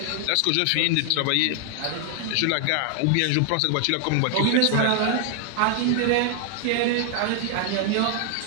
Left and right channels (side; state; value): both; different; correlation 0.00